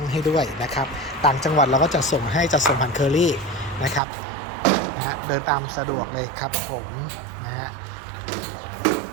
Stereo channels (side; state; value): left; drops out; at 4.0 s